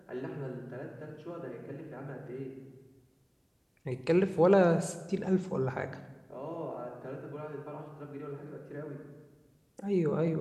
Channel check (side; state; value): both; identical; correlation 1.00